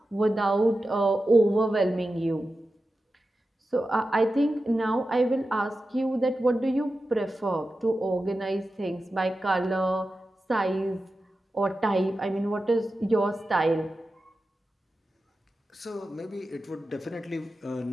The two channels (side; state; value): both; normal; correlation 0.92